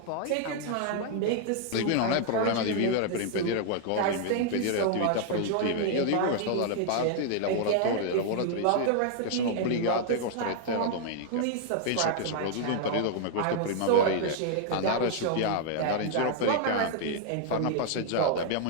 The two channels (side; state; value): both; different; correlation 0.00